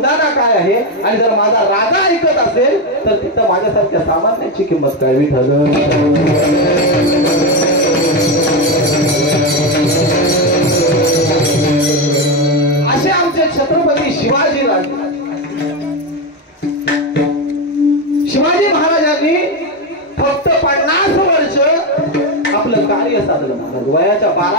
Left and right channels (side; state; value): both; normal; correlation 0.11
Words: काय आहे. आणि जर माझा राजा ऐकत असेल तर तिथं माझ्यासारख्या सामान्यांची किंमत काय. विठ्ठल असे आमचे छत्रपती शिवाजी राजे. शिवाजी महाराजांनी फक्त 50 वर्ष आपलं कार्य साधलं. महाराज वयाच्या